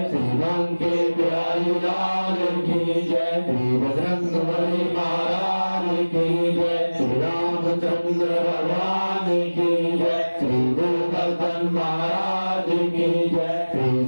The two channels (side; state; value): both; inverted; correlation -1.00